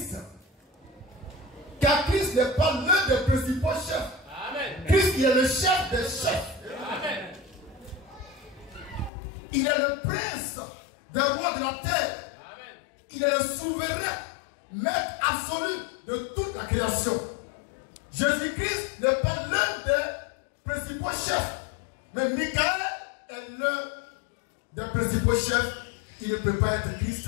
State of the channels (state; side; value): drops out; right; at 9.1 s